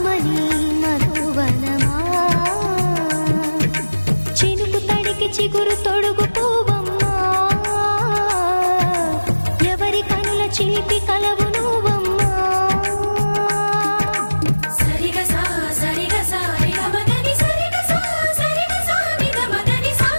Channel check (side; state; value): both; inverted; correlation -1.00